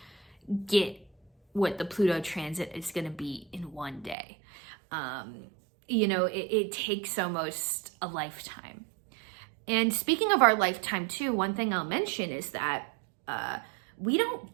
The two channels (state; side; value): drops out; left; at 4.2 s